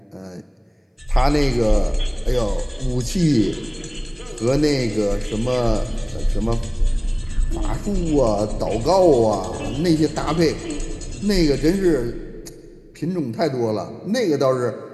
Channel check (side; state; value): both; identical; correlation 1.00